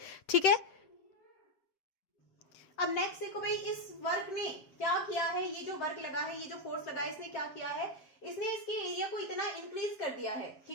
ठीक है। अब नेक्स्ट देखो भाई, इस वर्क ने क्या किया है, ये जो वर्क लगा है, ये जो फोर्स लगा है, इसने क्या किया है, इसने इसके एरिया को इतना इंक्रीज कर दिया है,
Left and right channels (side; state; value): right; late; 8.1 ms